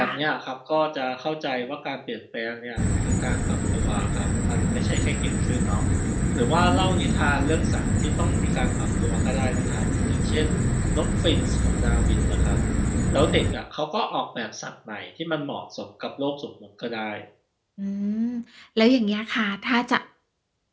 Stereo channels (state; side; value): identical; both; correlation 1.00